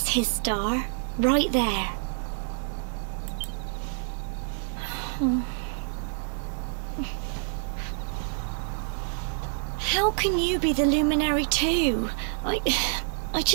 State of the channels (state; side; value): silent; left; digital silence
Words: his star, right there. How can you be the luminary too? I